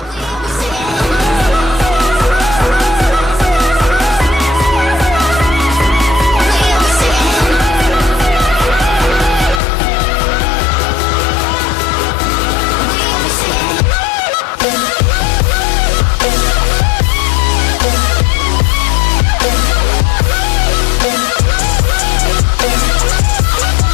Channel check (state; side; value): drops out; right; at 9.6 s